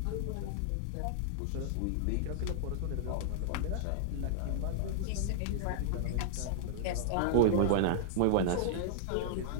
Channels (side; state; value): both; different; correlation -0.01